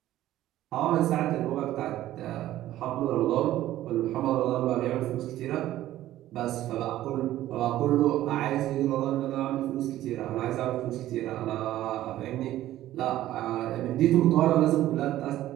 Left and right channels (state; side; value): quieter; left; 14.0 dB